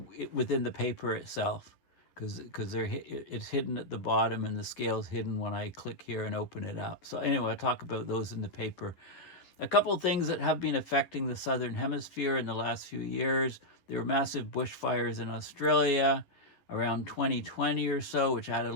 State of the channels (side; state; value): right; late; 11 ms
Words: within the paper itself, because it's hidden at the bottom and the scale's hidden when I click here and open it up. So anyway, I'll talk about those in the paper. A couple of things that have been affecting the southern hemisphere in the last few years. There were massive bushfires in Australia around 2020 or so, which added